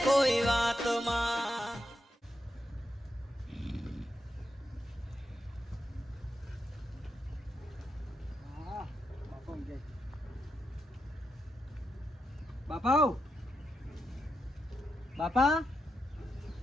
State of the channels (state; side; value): normal; both; correlation 0.86